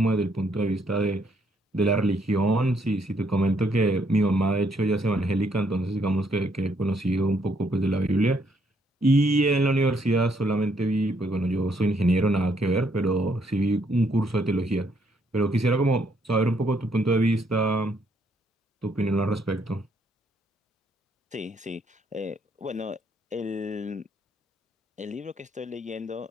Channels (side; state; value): both; normal; correlation 0.71